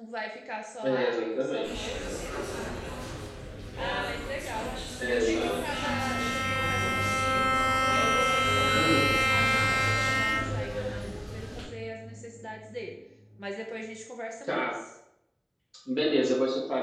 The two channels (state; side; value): identical; both; correlation 1.00